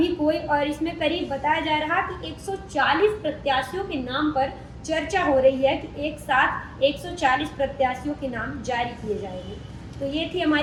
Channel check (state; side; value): identical; both; correlation 1.00